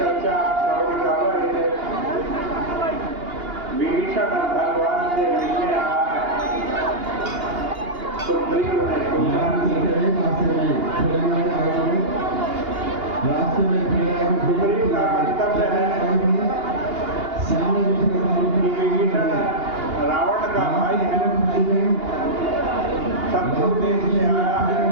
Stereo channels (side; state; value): left; late; 2.8 ms